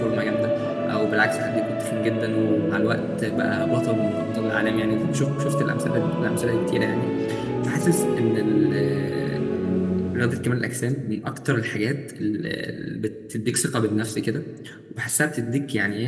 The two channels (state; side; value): identical; both; correlation 1.00